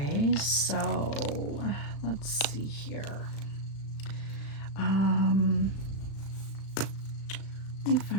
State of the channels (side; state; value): right; late; 36 ms